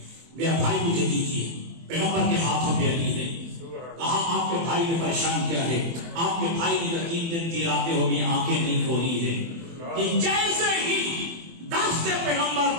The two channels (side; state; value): left; late; 24 ms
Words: میرا بھائی مجھے دیجیے. پیغمبر کے ہاتھوں پہ علی نے کہا آپ کے بھائی نے پریشان کیا ہے. آپ کے بھائی نے 3 دن 3 راتیں ہو گئی آنکھیں نہیں کھولی ہے. کہ جیسے ہی دست پیغمبر